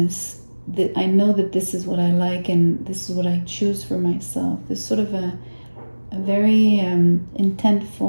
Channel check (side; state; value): both; inverted; correlation -1.00